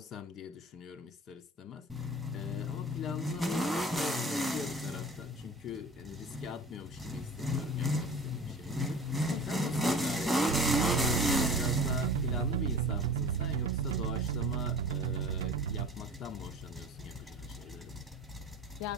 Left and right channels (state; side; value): normal; both; correlation 0.40